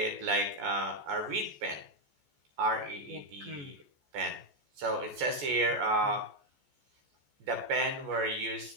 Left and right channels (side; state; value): left; late; 14 ms